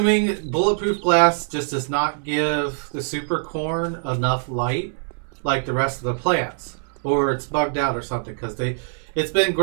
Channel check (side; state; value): left; silent; 62 dB below the other